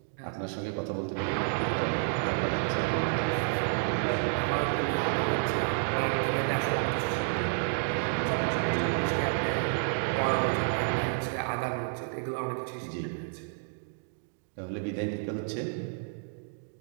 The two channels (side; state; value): left; silent; 58 dB below the other